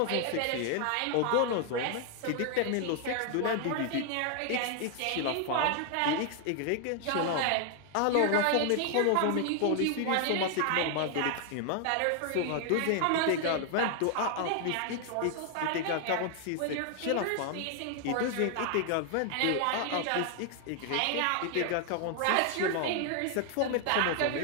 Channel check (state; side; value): different; both; correlation 0.00